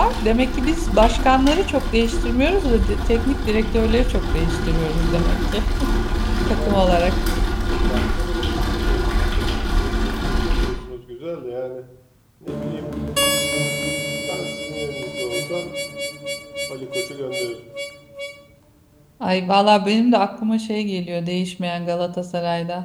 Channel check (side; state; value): both; identical; correlation 1.00